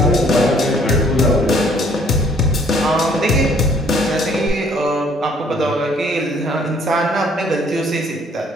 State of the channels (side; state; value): both; normal; correlation 0.61